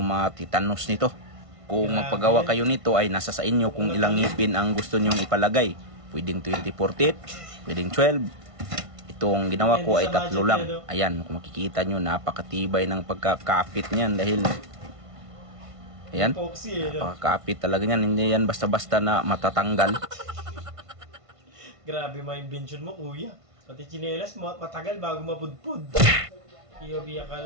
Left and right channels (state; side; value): late; left; 1.5 ms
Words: nito. Kung magpagawa kayo nito ay nasa sa inyo kung ilang ngipin ang gusto nyong ipalagay. Pwedeng 24 teeth, pwedeng 12. Itong ginawa ko ay 3 lang. Ayan, kung makikita nyo, napakatibay ng pagkakapit niyan dahil ayan, napakakapit talaga niyan. Hindi yan basta-basta na matatanggal. Grabe mga invention mo, kuya. Pati chinelas, matagal bago mapudpud. Iyobi,